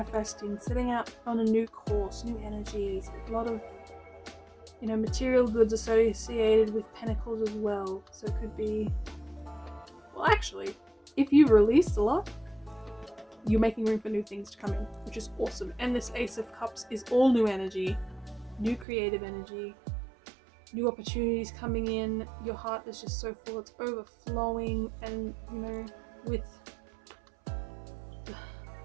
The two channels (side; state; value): left; drops out; at 18.9 s